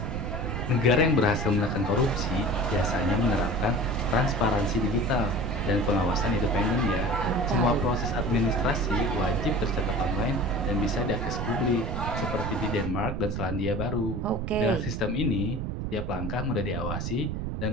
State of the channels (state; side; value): noise; right; rumble, 3 dB below the sound